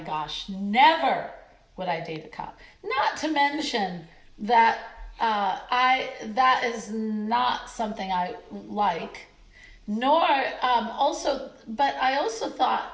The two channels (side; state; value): both; identical; correlation 1.00